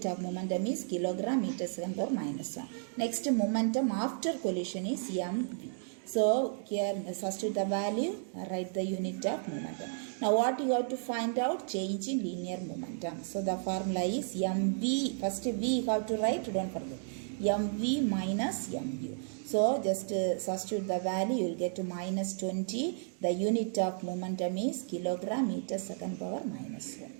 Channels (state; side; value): silent; left; digital silence